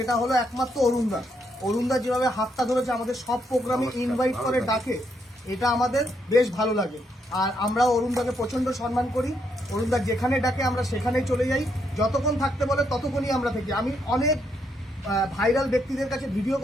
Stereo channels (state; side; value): normal; both; correlation 0.76